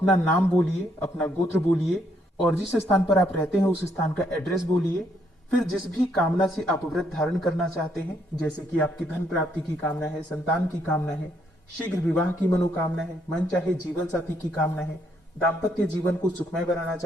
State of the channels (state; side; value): normal; both; correlation 0.72